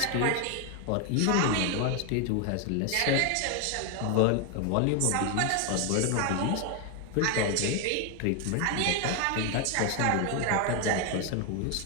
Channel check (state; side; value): different; both; correlation 0.01